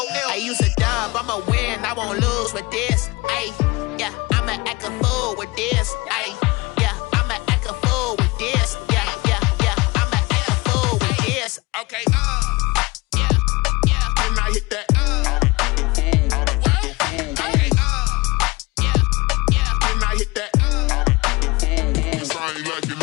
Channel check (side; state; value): right; quieter; 23.7 dB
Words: L. I use a dub, I'ma win, I won't lose with this. Yeah, I'ma act a fool with this. Yeah, I'ma act a fool with this. Yeah, I'ma act a fool with this. Okay, yeah, when I hit that. Okay, yeah, when I hit that. Cause I ain't like it,